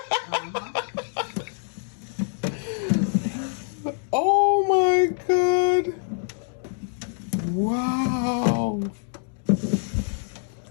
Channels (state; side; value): silent; right; 62 dB below the other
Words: Oh my God! Wow!